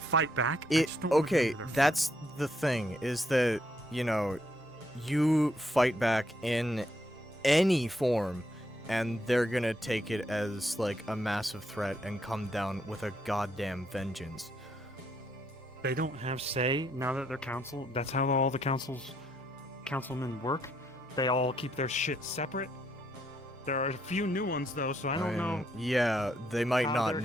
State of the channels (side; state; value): both; normal; correlation 0.74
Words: fight back. I just don't wanna be Okay, under their that's the thing, is that, you know, you fight back in any form, and they're gonna take it as, like, a massive threat and come down with a goddamn vengeance. They don't have say now that they're council. That's how all the councilmen work. They all keep their shit separate. There are a few new ones though, so I don't know. Yeah, they might how not they're